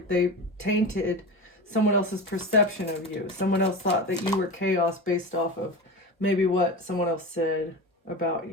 tainted someone else's perception of you. Someone else thought that you were chaos based off of maybe what someone else said about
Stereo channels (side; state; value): both; normal; correlation 0.26